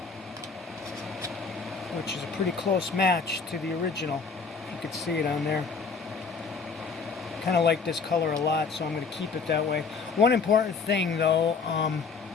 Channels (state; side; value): quieter; right; 5.1 dB